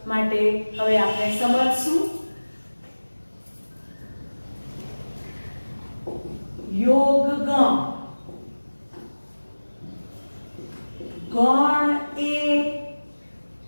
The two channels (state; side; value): inverted; both; correlation -1.00